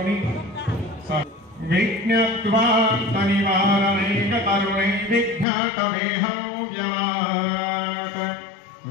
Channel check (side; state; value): right; drops out; at 5.5 s